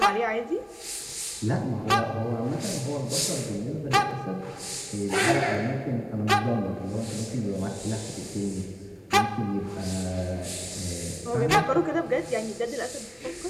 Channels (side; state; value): both; identical; correlation 1.00